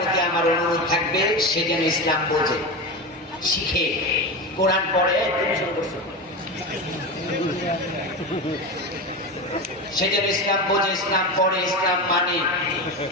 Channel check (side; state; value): both; normal; correlation 0.21